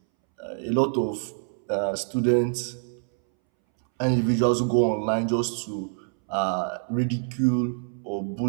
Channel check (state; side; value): silent; left; 61 dB below the other